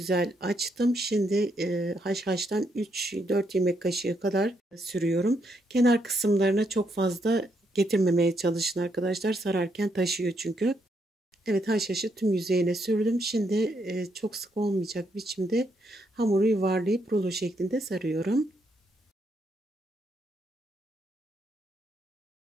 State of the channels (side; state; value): both; normal; correlation 0.76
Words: açtım. Şimdi haşhaştan 3-4 yemek kaşığı kadar sürüyorum. Kenar kısımlarına çok fazla getirmemeye çalışın arkadaşlar. Sararken taşıyor çünkü. Evet, haşhaşı tüm yüzeyine sürdüm. Şimdi çok sık olmayacak biçimde hamuru yuvarlayıp rulo şeklinde sarıyorum.